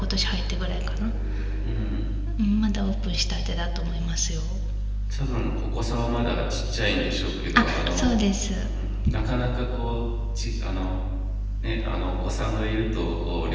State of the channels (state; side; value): identical; both; correlation 1.00